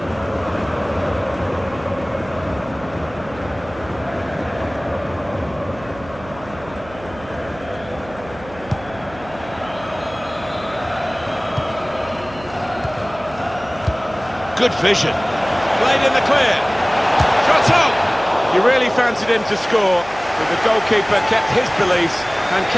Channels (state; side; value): noise; right; hum, 18 dB below the sound